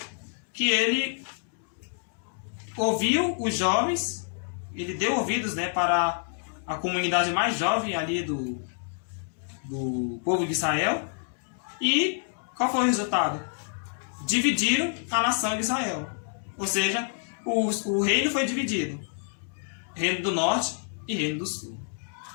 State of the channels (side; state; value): right; silent; digital silence